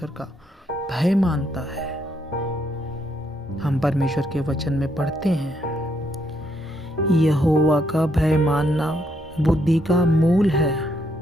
का भय मानता है। हम परमेश्वर के वचन में पढ़ते हैं, यहोवा का भय मानना बुद्धि का मूल है।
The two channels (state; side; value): normal; both; correlation 0.74